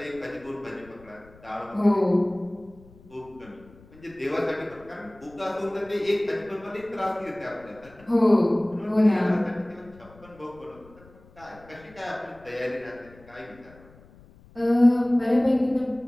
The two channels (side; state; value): left; noise; rumble, 24 dB below the sound